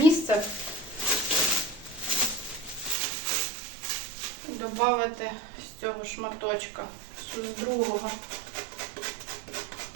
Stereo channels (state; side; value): drops out; left; at 3.0 s